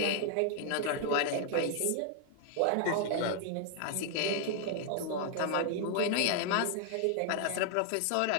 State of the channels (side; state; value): both; different; correlation 0.00